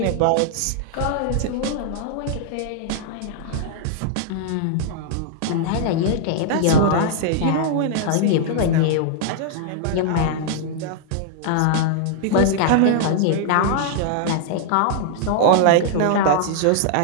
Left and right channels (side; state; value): both; different; correlation -0.01